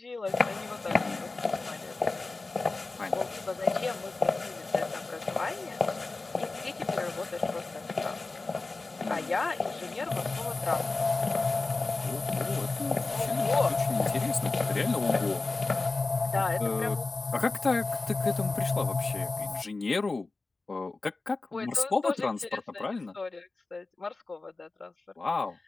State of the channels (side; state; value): right; quieter; 3.5 dB